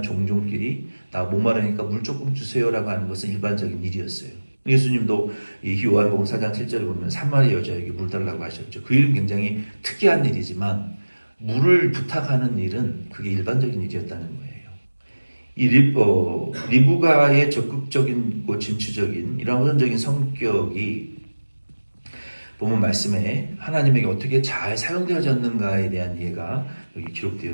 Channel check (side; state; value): both; inverted; correlation -1.00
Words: 종족끼리 나 목마르니까 물 조금 주세요라고 하는 것은 일반적인 일이었어요. 예수님도 이 요한복음 4장 7절에 보면 사마리 여자에게 물 달라고 하셨죠. 그 일은 굉장히 특이한 일이지만 물을 부탁하는 일은 그게 일반적인 일이었다는 거예요. 이 리브가의 적극적인 진취적인 이런 호전적인 성격이 보면 말씀에 하나님에게 어떻게 잘 사용되어졌는가에 대한 이해가 여기